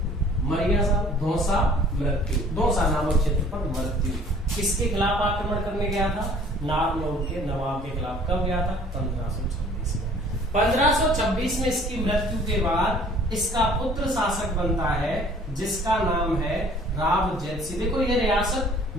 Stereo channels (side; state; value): both; normal; correlation 0.53